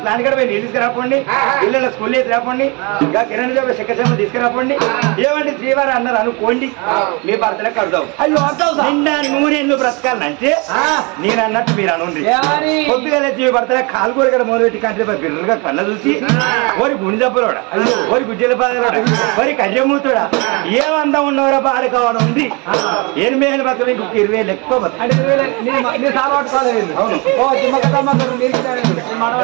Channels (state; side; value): quieter; left; 29.4 dB